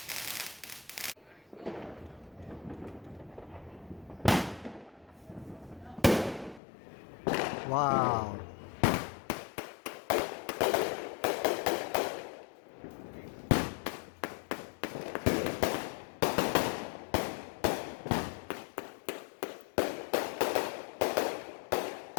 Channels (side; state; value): right; drops out; at 6.6 s